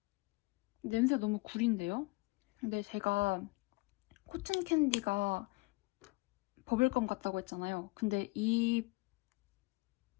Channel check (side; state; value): right; quieter; 24.3 dB